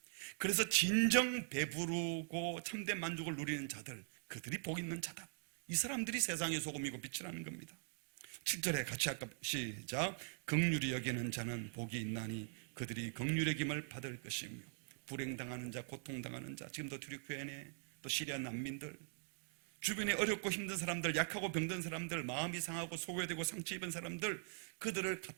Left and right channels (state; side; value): silent; left; digital silence